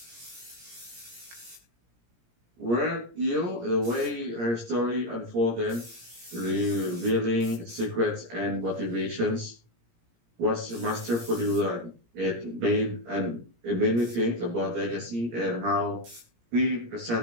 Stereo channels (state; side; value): late; left; 17 ms